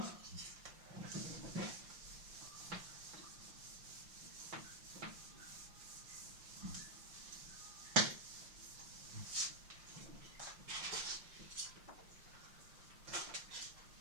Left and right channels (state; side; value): late; left; 5.7 ms